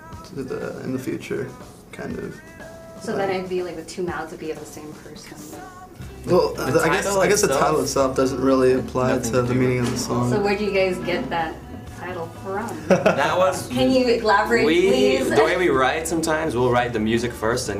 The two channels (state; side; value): identical; both; correlation 1.00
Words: in the future, kind of. So then it'd be like the two mouths would be of the same person. Well, I guess the title itself doesn't really apply to the meaning of the song. So where do you guys get that title from? That was. Can you elaborate, please? The way we write, sometimes we'll write the music first,